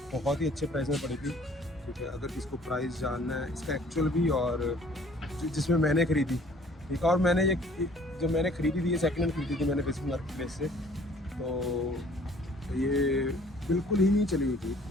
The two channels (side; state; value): both; normal; correlation 0.55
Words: बहुत ही अच्छे प्राइस में पड़ी थी, ठीक है। अगर किसको प्राइस जानना है इसका एक्चुअल भी, और जिसमें मैंने ख़रीदी, ठीक है। और मैंने ये जब मैंने ख़रीदी थी, ये सेकंड हैंड ख़रीदी थी मैंने फेसबुक मार्केट प्लेस से। तो ये बिल्कुल ही नहीं चली हुई थी,